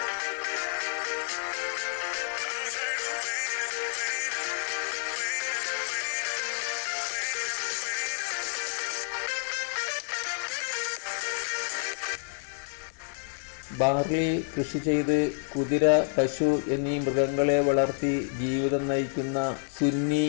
ബാർലി കൃഷി ചെയ്ത് കുതിര, പശു എന്നീ മൃഗങ്ങളെ വളർത്തി ജീവിതം നയിക്കുന്ന സുന്നി,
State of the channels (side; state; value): right; silent; digital silence